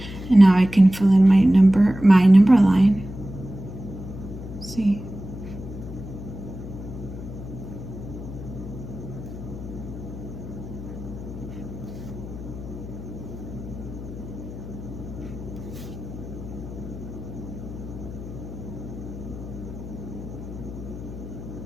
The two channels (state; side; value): noise; left; hum, 11 dB below the sound